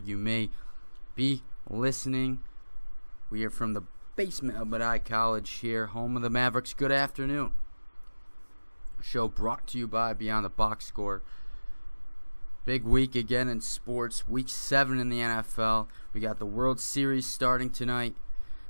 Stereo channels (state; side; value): inverted; both; correlation -1.00